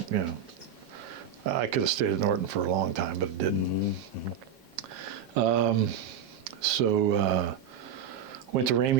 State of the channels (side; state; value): left; quieter; 7.5 dB